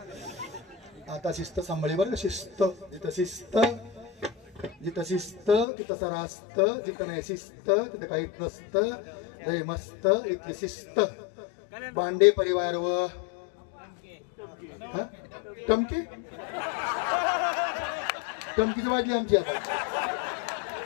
आता शिस्त सांभाळी बरं. शिस्त जिथं शिस्त जिथं शिस्त तिथं सारा असतं. जिथं नाही शिस्त तिथं काहीच नसतं. लय मस्त इथली शिस्त. बांडे परिवार व टमकी टमकीच वाजली आमची. आता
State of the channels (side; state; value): right; drops out; at 5.7 s